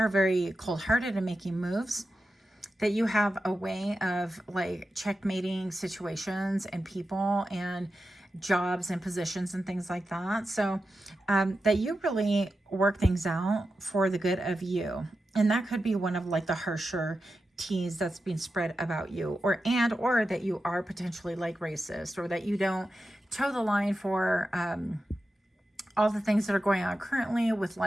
very cold-hearted in making moves, that you have a way of like checkmating situations and people and jobs and positions and things like that. So that you really work things out for the good of you. And that could be one of like the harsher T's that's being spread about you, or that you are potentially like racist, or that you don't toe the line for all the things that are going on currently with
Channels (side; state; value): both; normal; correlation 0.91